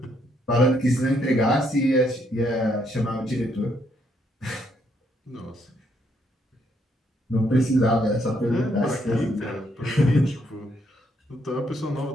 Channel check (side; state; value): both; normal; correlation 0.73